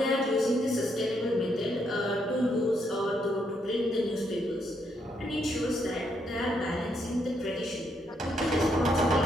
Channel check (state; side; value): normal; both; correlation 0.76